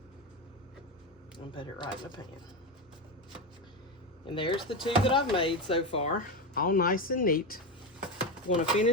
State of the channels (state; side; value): normal; both; correlation 0.15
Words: and put it right in the pan. And there's the 2 that I've made so far, all nice and neat. I'm going to